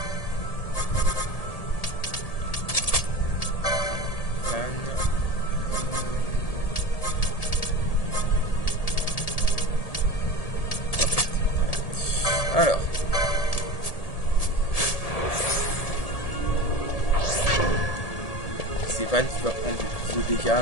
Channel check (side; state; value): right; late; 1.8 ms